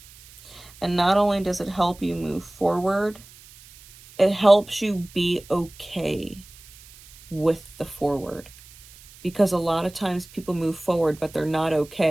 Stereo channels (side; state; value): right; noise; hiss, 22 dB below the sound